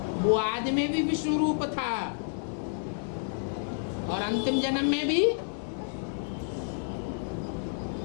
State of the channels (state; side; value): silent; right; digital silence